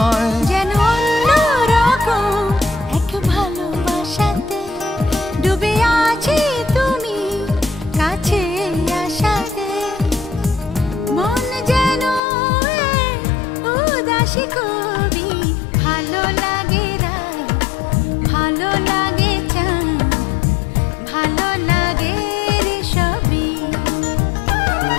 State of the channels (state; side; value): drops out; right; at 12.2 s